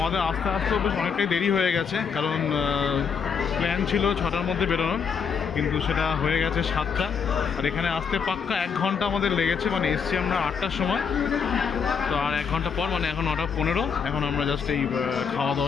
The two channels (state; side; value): quieter; right; 6.3 dB